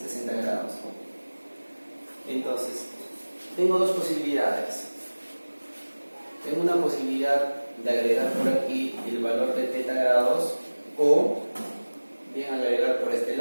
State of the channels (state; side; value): inverted; both; correlation -1.00